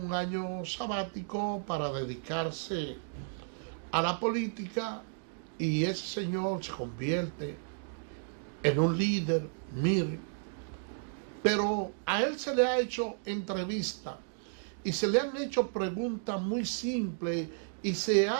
año sabático para dedicarse a la política y ese señor se convierte en un líder, mire. Pero a él se le ha hecho entrevista y se le han hecho preguntas muy simples y se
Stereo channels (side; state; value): left; silent; digital silence